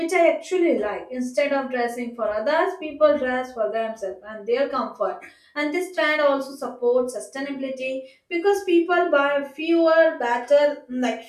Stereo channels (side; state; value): both; identical; correlation 1.00